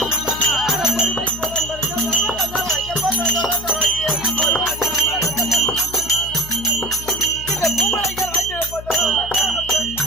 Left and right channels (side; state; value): left; noise; hum, 13 dB below the sound